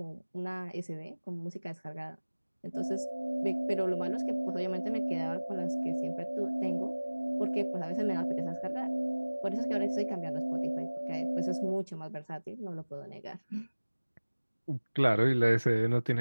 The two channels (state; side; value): inverted; both; correlation -1.00